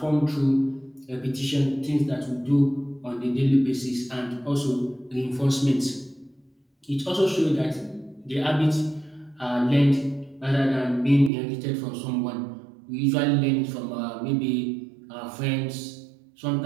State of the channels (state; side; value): drops out; left; at 11.3 s